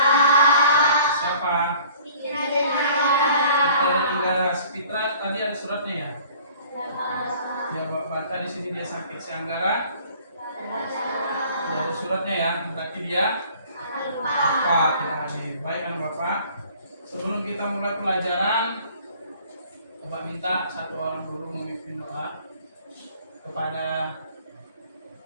Siapa? Fitra dan Anggara. Fitra tadi ada suratnya ya? Ya, baca di sini dia sakit. Si Anggara tidak ada suratnya ya, berarti dia apa tidak hadir. Baik anak Bapak, sebelum kita mulai pelajaran, Bapak minta satu orang dulu memimpin doa kepada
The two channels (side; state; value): both; inverted; correlation -0.52